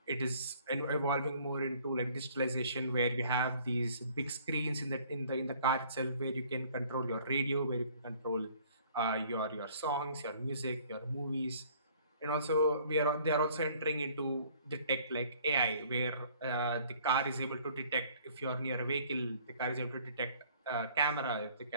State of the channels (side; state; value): both; inverted; correlation -0.57